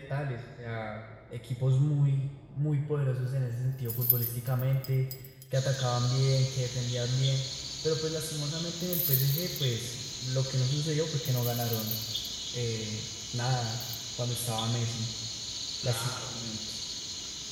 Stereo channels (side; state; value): both; identical; correlation 1.00